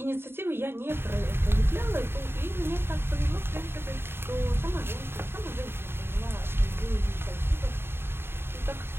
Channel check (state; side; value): late; left; 0.11 ms